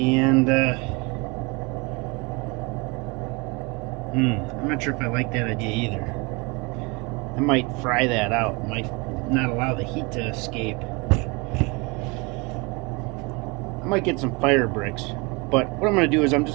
I'm not sure if I like that idea either. I might fry that out. Might not allow the heat to escape. I might get some fire bricks, but what I'm going to do is I'm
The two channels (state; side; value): quieter; left; 28.0 dB